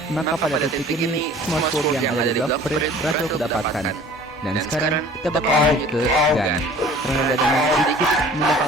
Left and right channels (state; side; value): normal; both; correlation 0.48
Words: maka pada titik ini, semua sword yang ada di Blackbird berhasil kudapatkan. Dan sekarang kita bakal lanjut ke Gun. Karena ada dengan sedikit